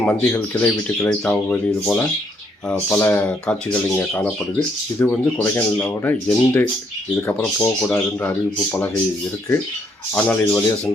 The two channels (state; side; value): normal; both; correlation 0.71